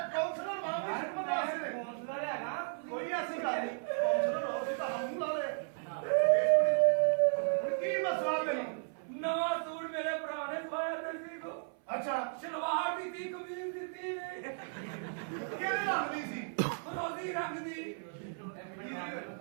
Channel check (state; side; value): silent; left; 54 dB below the other